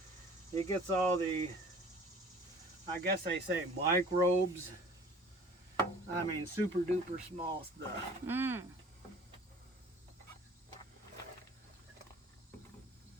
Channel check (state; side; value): normal; both; correlation 0.48